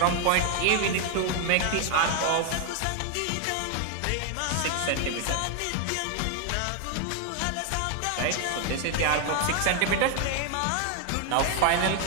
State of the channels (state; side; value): different; both; correlation 0.00